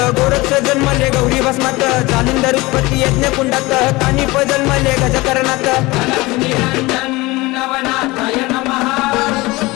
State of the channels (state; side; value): quieter; right; 21.7 dB